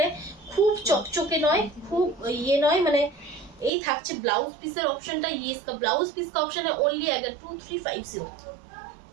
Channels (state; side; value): drops out; left; at 3.7 s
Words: है, খুব চকচকে নয়, খুব ये নয়, মানে এই থাকছে ব্লাউজ পিসের অপশনটা, ये इसका ब्लाउज पीस का ऑप्शन है, ओनली अगर 2350,